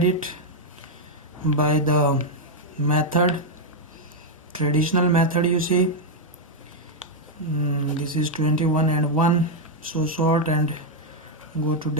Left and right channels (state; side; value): normal; both; correlation 0.00